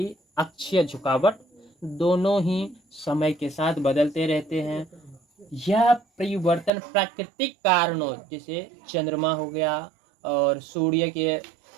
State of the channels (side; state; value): left; drops out; at 6.7 s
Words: अक्षीय झुकावट दोनों ही समय के साथ बदलते रहते हैं। यह परिवर्तन प्राकृतिक कारणों जैसे चंद्रमा हो गया और सूर्य के